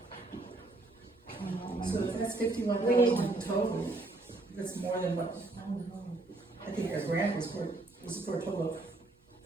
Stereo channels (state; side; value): quieter; left; 3.0 dB